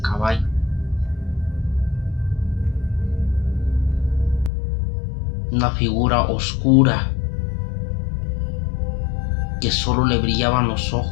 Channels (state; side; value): drops out; right; at 4.5 s